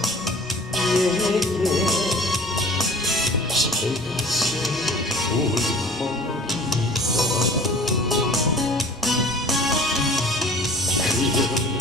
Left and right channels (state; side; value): normal; both; correlation 0.44